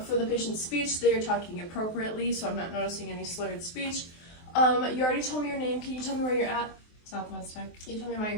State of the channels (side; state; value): right; late; 23 ms